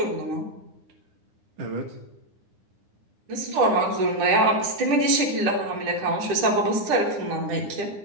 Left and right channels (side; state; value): left; late; 9.8 ms